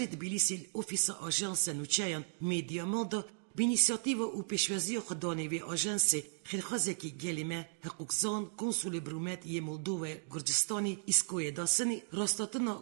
تبلیسی اوفیس آژانس نوچهان میدیا مالدا بینیسیاتیو و پیشوازی خدانی و آژانس خیرخوازی که گلیمه حقوقزان کنسول برومت یه مولدو گرجستانی اسکوی داسنی راستاتنا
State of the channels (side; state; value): left; silent; digital silence